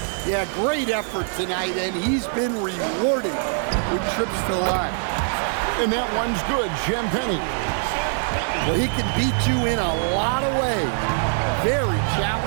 Yeah, great effort tonight, and he's been rewarded with trips to the line. And that one's good, Champagnie. Well, he can beat you in a lot of ways. Very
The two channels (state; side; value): silent; left; 57 dB below the other